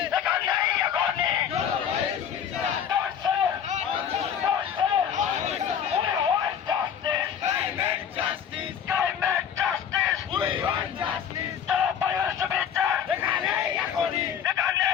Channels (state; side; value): quieter; right; 8.4 dB